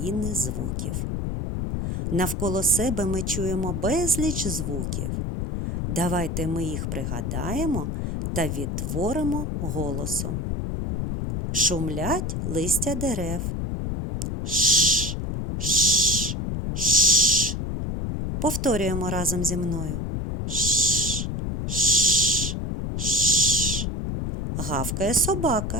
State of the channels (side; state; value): left; noise; rumble, 2 dB below the sound